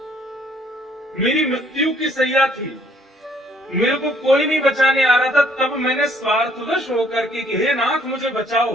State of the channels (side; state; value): both; normal; correlation 0.63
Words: मेरी मृत्यु की सैया थी, मेरे को कोई नहीं बचाने आ रहा था, तब मैंने स्वार्थवश होकर के कि हे नाथ मुझे बचाओ,